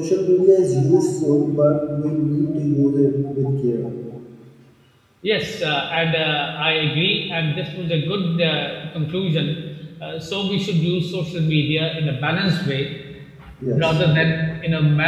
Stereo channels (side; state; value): both; identical; correlation 1.00